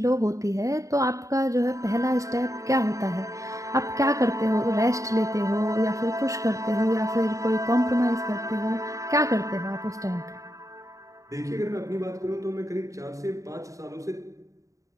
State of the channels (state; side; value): late; left; 0.16 ms